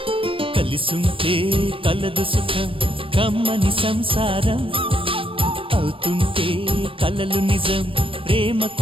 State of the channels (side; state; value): left; late; 0.26 ms